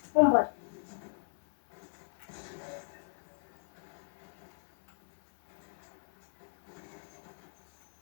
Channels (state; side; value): silent; right; 54 dB below the other